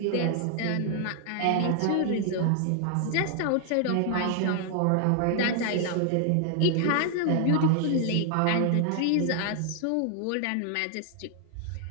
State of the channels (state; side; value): different; both; correlation 0.00